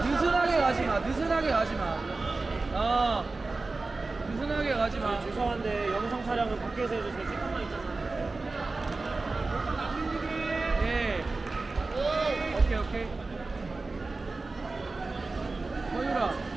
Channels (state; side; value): quieter; left; 3.6 dB